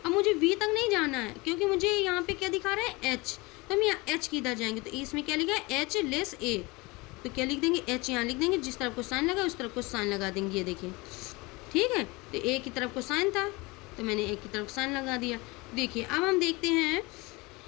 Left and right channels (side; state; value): right; quieter; 24.5 dB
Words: अब मुझे वी तक नहीं जाना है क्योंकि मुझे यहाँ पे क्या दिखा रहा है एच, तो हम यहाँ एच की इधर जाएंगे, तो इसमें क्या लिखा है एच लेस ए, तो क्या लिख देंगे एच यहाँ लिख देंगे, जिस तरफ को साइन लगा उस तरफ को साइन लगा देंगे, ये देखिए, ठीक है, तो ए की तरफ को साइन था तो मैंने ए की तरफ साइन लगा दिया। देखिए अब हम देखते हैं